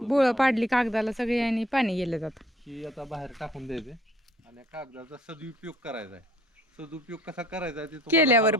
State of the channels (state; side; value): normal; both; correlation 0.56